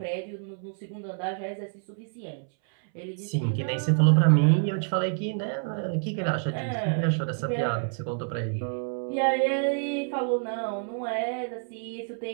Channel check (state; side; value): silent; left; 60 dB below the other